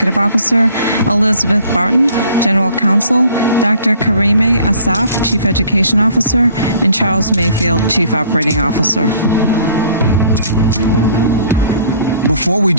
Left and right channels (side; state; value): both; inverted; correlation -0.55